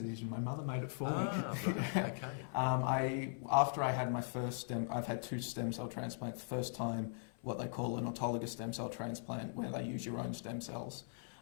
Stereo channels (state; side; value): silent; right; 51 dB below the other